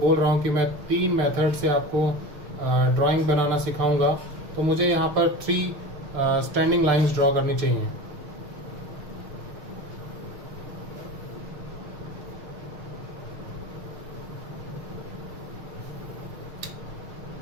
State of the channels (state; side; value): late; left; 6.4 ms